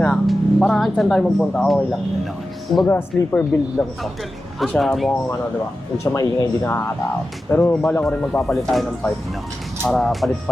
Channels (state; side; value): normal; both; correlation 0.92